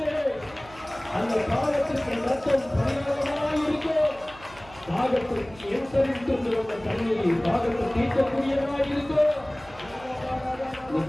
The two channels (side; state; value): right; noise; hum, 21 dB below the sound